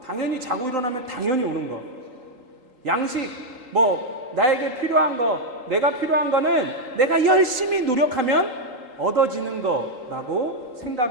당연히 자고 일어나면 당연히 오는 거. 양식, 나에게 필요한 거, 내가 필요한 거는 내가 열심히 노력하면 얻어지는 거라고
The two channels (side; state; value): left; late; 3.7 ms